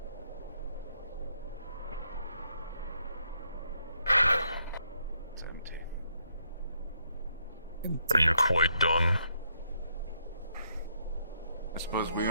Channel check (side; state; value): both; inverted; correlation -0.75